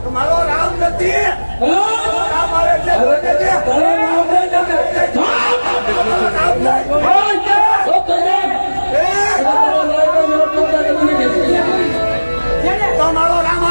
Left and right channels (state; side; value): inverted; both; correlation -1.00